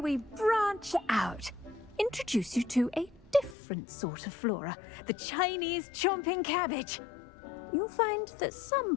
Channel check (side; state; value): right; drops out; at 3.6 s